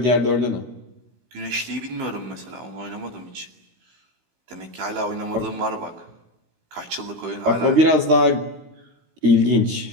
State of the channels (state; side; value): late; left; 16 ms